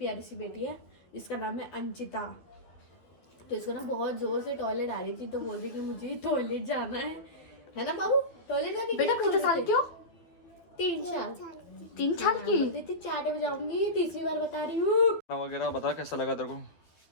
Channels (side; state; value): right; late; 12 ms